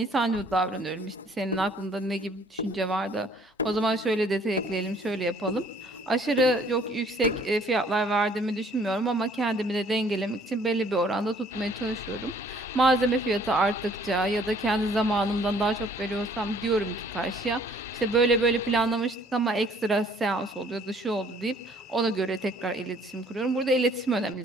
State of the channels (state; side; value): normal; both; correlation 0.58